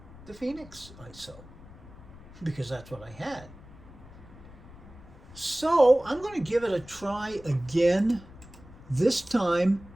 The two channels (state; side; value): noise; left; rumble, 19 dB below the sound